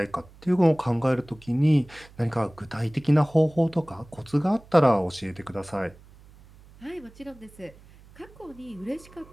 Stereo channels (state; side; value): noise; right; hum, 24 dB below the sound